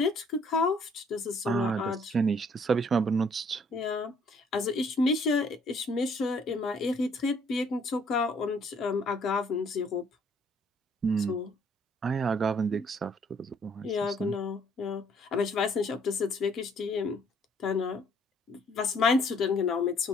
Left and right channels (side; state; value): both; normal; correlation 0.63